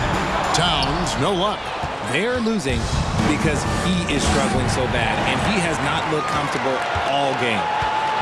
Towns, no luck. They're losing because he is struggling so bad, and he has not looked comfortable all game.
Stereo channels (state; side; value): identical; both; correlation 1.00